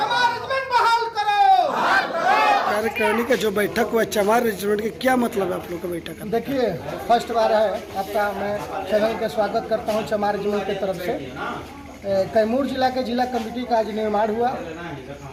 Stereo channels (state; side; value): identical; both; correlation 1.00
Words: रेजिमेंट बहाल करो। कार्यकारिणी का जो बैठक हुआ चमार रेजिमेंट के क्या मतलब है आप लोग का बैठक का? देखिए, फर्स्ट बार है आपका, मैं चैनल का स्वागत करता हूं चमार रेजिमेंट की तरफ से। कैमूर जिला के जिला कमेटी का आज निर्माण हुआ,